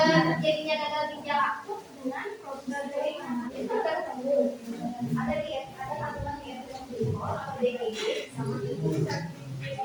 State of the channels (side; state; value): both; identical; correlation 1.00